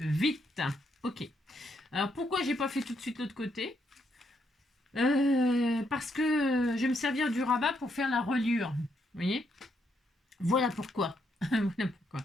Ok. Alors, pourquoi j'ai pas fait tout de suite l'autre côté? Parce que je vais me servir du rabat pour faire la reliure. Vous voyez? Voilà pourquoi. Voilà pourquoi.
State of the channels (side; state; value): both; normal; correlation 0.76